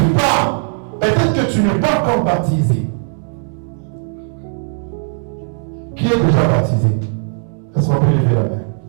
pas. Peut-être que tu n'es pas encore baptisé. Qui est déjà baptisé? Est-ce qu'on peut lever la main?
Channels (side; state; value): left; silent; 56 dB below the other